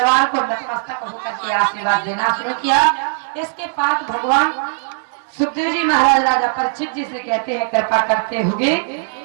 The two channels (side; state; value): left; silent; 67 dB below the other